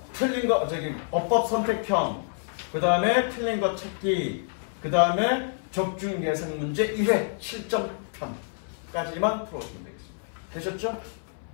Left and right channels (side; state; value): right; silent; 59 dB below the other